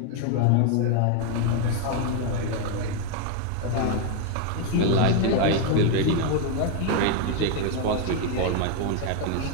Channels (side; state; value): both; different; correlation 0.01